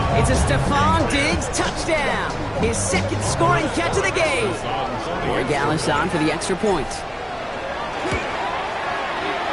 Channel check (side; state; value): both; identical; correlation 1.00